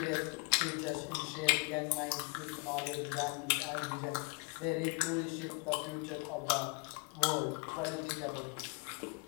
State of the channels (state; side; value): quieter; right; 32.6 dB